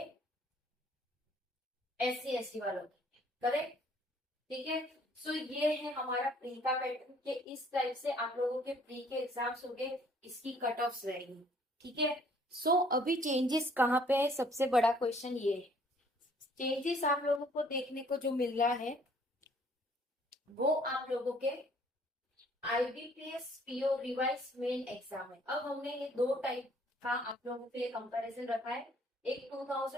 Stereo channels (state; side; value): normal; both; correlation 0.60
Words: SC/ST वालों के, करेक्ट? ठीक है, सो ये है हमारा प्री का पैटर्न के इस टाइप से आप लोगों के प्री के एग्जाम्स हो गए, इसकी कट ऑफ रहेगी। ठीक है, सो अभी चेंजेस कहाँ पे है, सबसे बड़ा क्वेश्चन ये है। चेंजेस आप लोगों को देखने को जो मिल रहा है वो आप लोगों के IBPS PO revise main exam है। अब हमने ये दो टाइप का आप लोगों के लिए कंपैरिजन रखा है, एक